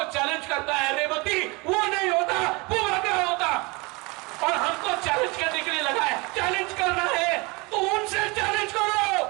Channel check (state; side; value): quieter; left; 26.5 dB